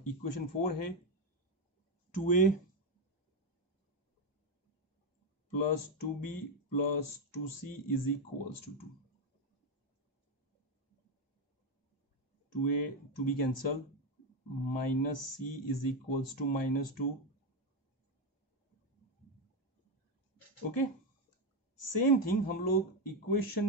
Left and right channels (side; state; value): both; normal; correlation 0.07